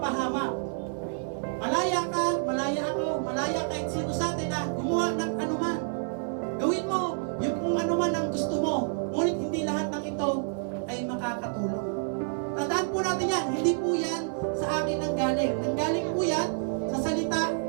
Malaya ka, malaya ako, malaya kahit sino sa atin na gumawa ng anuman. Gawin mo yung kung anuman ang gusto mo, ngunit hindi lahat ng ito ay makakatulong. Tandaan po natin yan, hindi po yan sa akin nanggaling. Nanggaling po yan sa salita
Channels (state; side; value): silent; left; 57 dB below the other